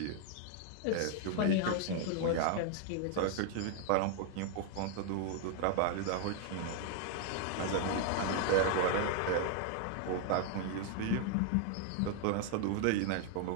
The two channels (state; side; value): different; both; correlation 0.00